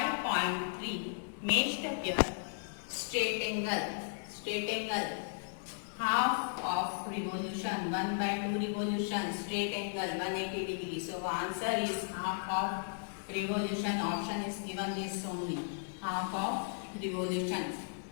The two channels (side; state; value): right; silent; 54 dB below the other